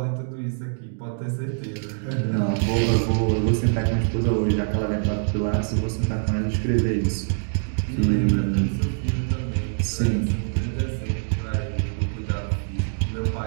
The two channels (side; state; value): left; silent; digital silence